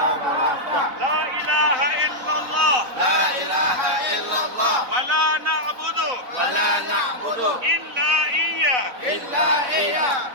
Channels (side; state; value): left; late; 4.0 ms